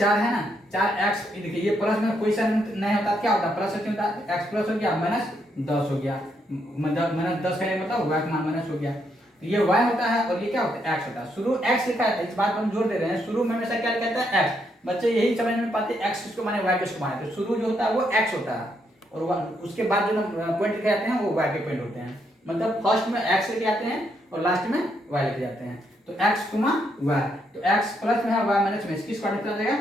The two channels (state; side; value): normal; both; correlation 0.76